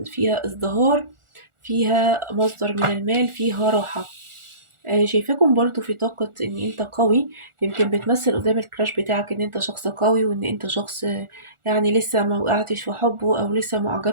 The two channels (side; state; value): left; late; 1.4 ms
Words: فيها ازدهار، فيها مصدر من المال، فيها راحة. شايفاكم برضو في طاقة ان انت قوي، يمكن بتمثل قدام الكراش بتاعك ان انت شخص قوي، وان انت شخص يعني لسه ما وقعتش في حبه او لسه ما